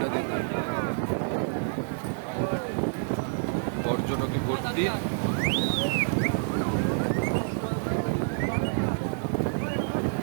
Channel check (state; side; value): silent; left; digital silence